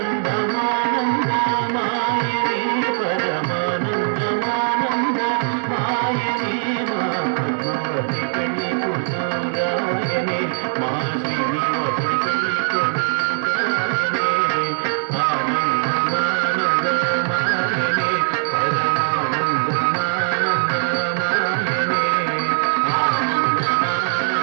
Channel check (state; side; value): silent; left; digital silence